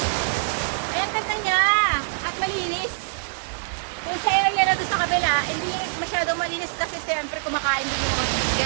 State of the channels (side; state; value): left; silent; digital silence